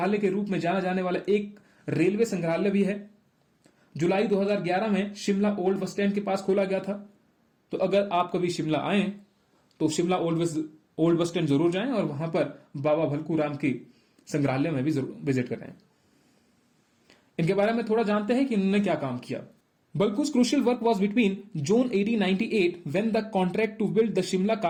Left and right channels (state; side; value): identical; both; correlation 1.00